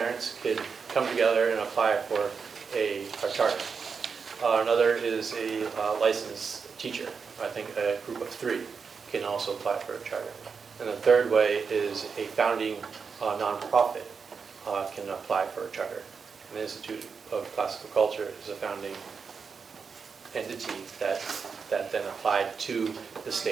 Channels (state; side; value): quieter; left; 5.6 dB